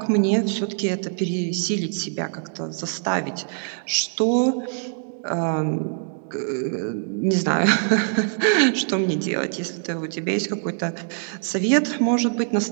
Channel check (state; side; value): silent; left; digital silence